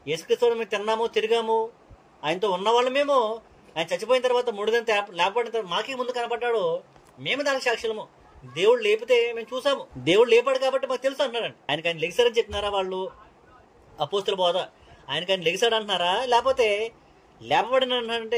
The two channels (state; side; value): identical; both; correlation 1.00